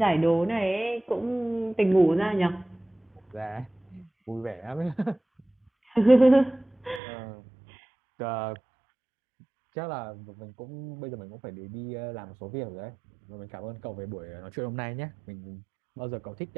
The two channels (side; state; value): left; drops out; at 7.0 s